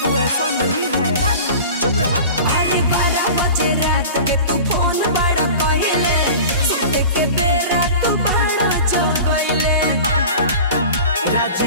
ऐसा नहीं है। चुप रहा। अरे 12 बजे रात के तू फोन बड़ा कइले सुते के बेरा तू बड़ा जगइले। रात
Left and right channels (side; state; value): both; inverted; correlation -0.37